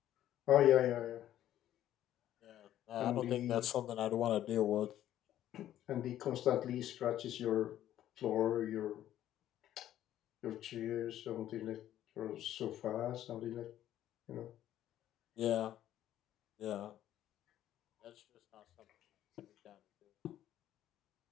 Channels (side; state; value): right; quieter; 12.2 dB